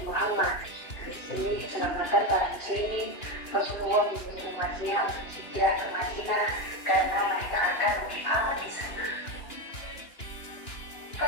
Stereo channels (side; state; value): right; late; 2.9 ms